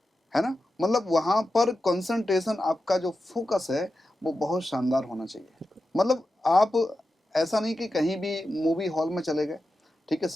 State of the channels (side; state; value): both; normal; correlation 0.91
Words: है ना। मतलब वहाँ पर कंसंट्रेशन, आपका जो फोकस है वो बहुत शानदार होना चाहिए। मतलब आप ऐसा नहीं कि कहीं भी मूवी हॉल में चले गए, ठीक है,